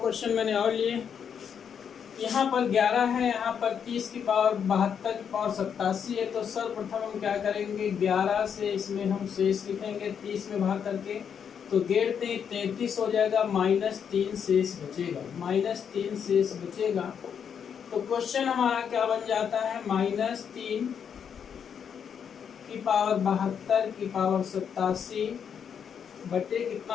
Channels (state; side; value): quieter; right; 7.6 dB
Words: मैंने और लिए। यहाँ पर 11 है, यहाँ पर 30 की पावर 72 की पावर 87 है। तो सर्वप्रथम हम क्या करेंगे, 11 से इसमें हम शेष लिखेंगे 30 में भाग करके। तो 33 हो जाएगा, -3 शेष बचेगा, -3 शेष बचेगा। तो क्वेश्चन हमारा क्या बन जाता है, -3 की पावर 72 की पावर 87 बटे कितना